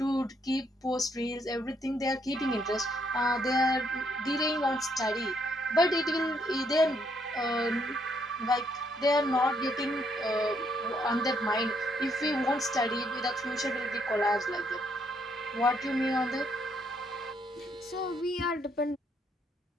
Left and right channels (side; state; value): both; normal; correlation 0.72